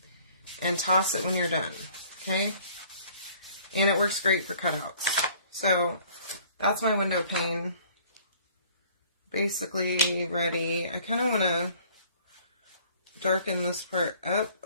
and toss it when you're done, okay? And it works great for cutouts. So, that's my window pane. Basically ready. I kind of want to darken this part up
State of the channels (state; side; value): inverted; both; correlation -0.55